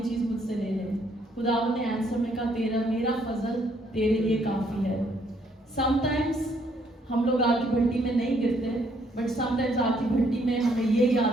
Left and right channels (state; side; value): normal; both; correlation 0.69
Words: چیز مجھ سے لے لے۔ خداوند نے آنسر میں کہا میرا فضل تیرے لیے کافی ہے۔ سم ٹائمز ہم لوگ آگ کی بھٹی میں نہیں گرتے، بٹ سم ٹائمز آگ کی بھٹی میں ہمیں یہ